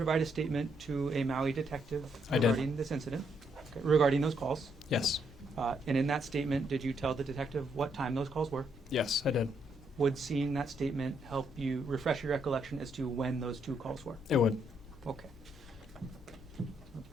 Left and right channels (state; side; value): normal; both; correlation 0.75